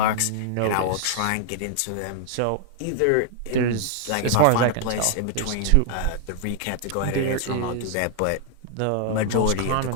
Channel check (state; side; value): different; both; correlation 0.00